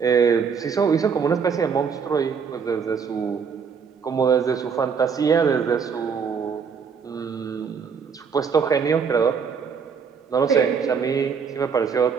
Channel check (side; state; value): left; quieter; 6.2 dB